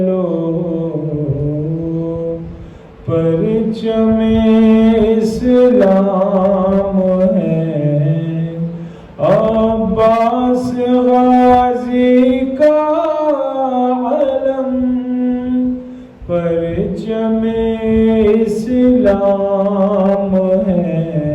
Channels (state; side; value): identical; both; correlation 1.00